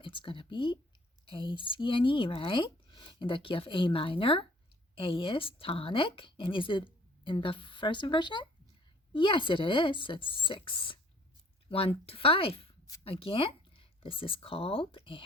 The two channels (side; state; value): both; normal; correlation 0.56